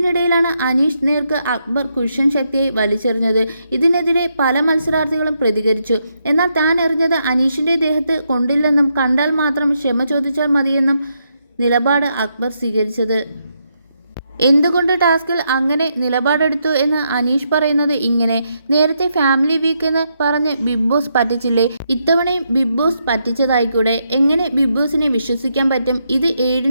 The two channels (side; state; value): both; inverted; correlation -0.80